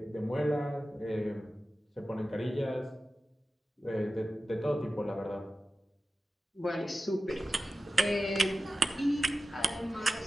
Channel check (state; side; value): normal; both; correlation 0.94